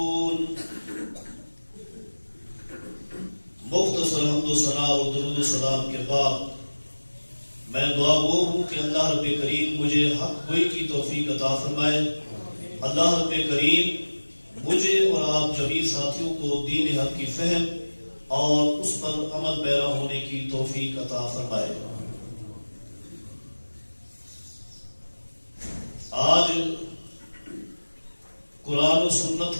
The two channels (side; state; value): both; inverted; correlation -1.00